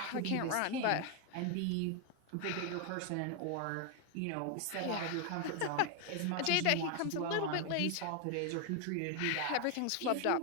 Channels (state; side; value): different; both; correlation 0.01